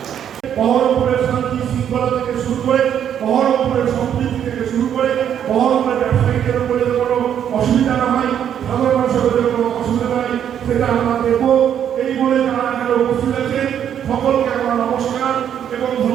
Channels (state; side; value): quieter; left; 9.3 dB